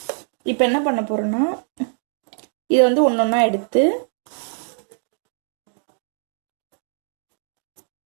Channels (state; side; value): silent; left; 62 dB below the other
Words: இப்போ என்ன பண்ண போறோம்னா இதை வந்து ஒன்றொன்னா எடுத்து